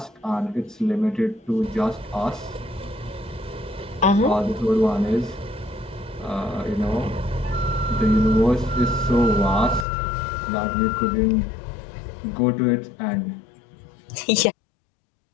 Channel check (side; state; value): right; drops out; at 9.9 s